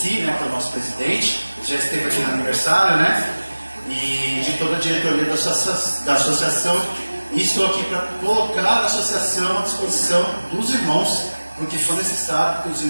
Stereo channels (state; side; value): inverted; both; correlation -1.00